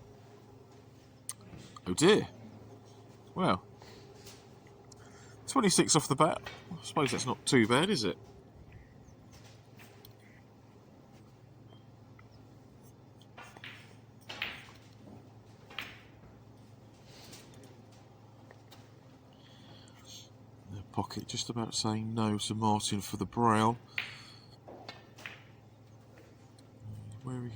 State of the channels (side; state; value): both; identical; correlation 1.00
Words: Oh dear. Well, 26 off the bat. I suppose that's not too bad, is it? Pocket just about saying no to Martin for the brown. Where he